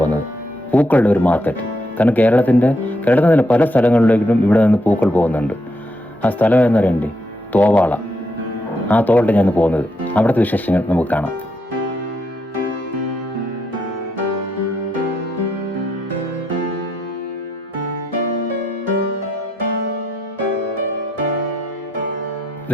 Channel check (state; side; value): normal; both; correlation 0.78